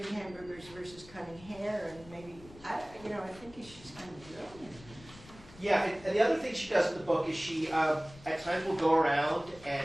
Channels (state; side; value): noise; left; rumble, 20 dB below the sound